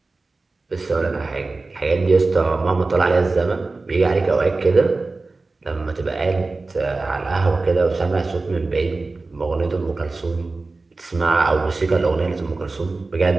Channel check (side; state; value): left; quieter; 3.5 dB